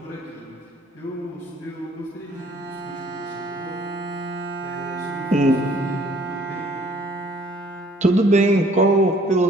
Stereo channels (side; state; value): both; normal; correlation 0.58